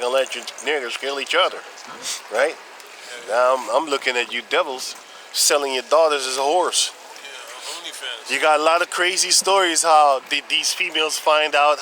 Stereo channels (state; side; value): identical; both; correlation 1.00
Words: and let you niggers kill each other, right? Now I'm looking at you devils selling your daughters as a horse. Yeah, OnlyFans. You got a lot of crazy stories how these females find out